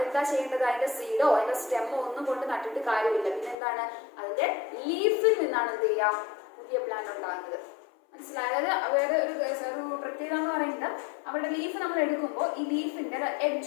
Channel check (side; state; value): right; drops out; at 3.6 s